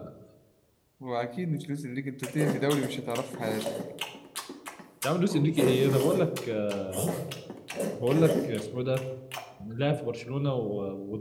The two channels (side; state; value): both; identical; correlation 1.00